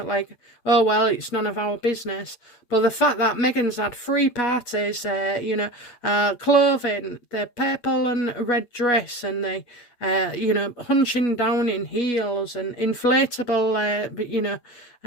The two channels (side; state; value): right; late; 8.8 ms